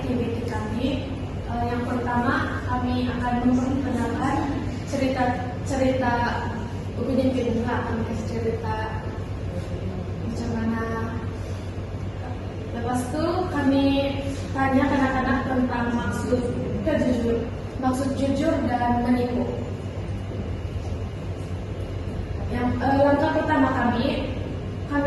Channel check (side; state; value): both; identical; correlation 1.00